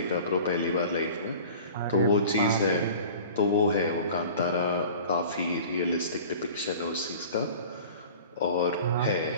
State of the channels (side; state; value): both; inverted; correlation -0.42